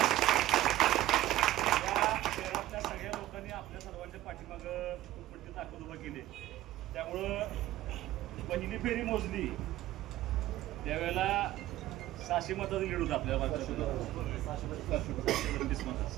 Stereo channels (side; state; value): left; quieter; 15.0 dB